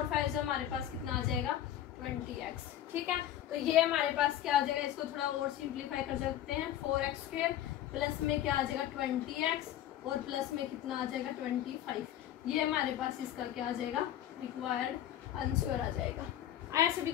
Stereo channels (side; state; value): right; quieter; 11.8 dB